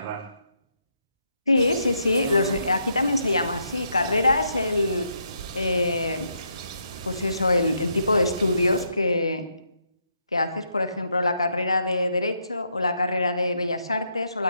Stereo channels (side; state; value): both; inverted; correlation -0.78